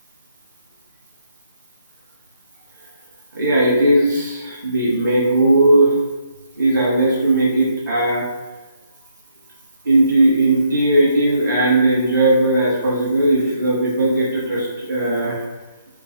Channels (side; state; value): both; inverted; correlation -0.74